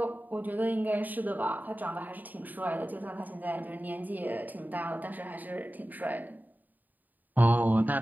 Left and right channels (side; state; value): left; late; 0.085 ms